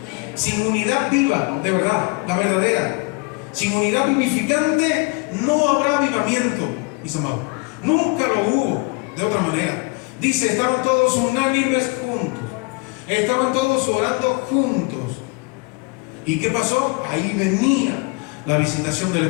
Sin unidad viva, de verdad, la verdadera, sin unidad vivificante no habrá avivamiento, mis amados. Nunca lo hubo de otra manera. Dice: estaban todos unánimes juntos. Estaban todos orando juntos. ¿Y qué pasó? Ahí venía la visitación del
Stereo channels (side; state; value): right; quieter; 27.9 dB